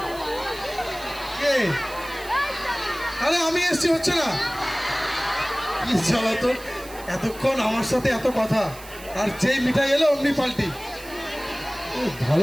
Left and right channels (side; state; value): right; noise; hiss, 18 dB below the sound